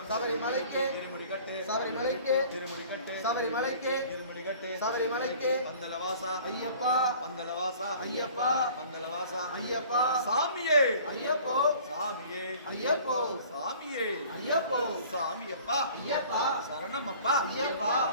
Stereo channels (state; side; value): inverted; both; correlation -0.49